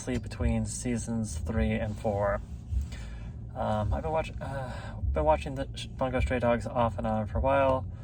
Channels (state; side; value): identical; both; correlation 1.00